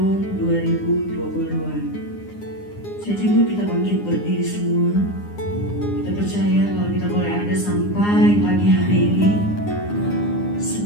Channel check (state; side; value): late; right; 9.7 ms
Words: 2022. Saya jemput kita bangkit berdiri semua. Kita percaya kalau kita boleh ada sampai pagi hari ini,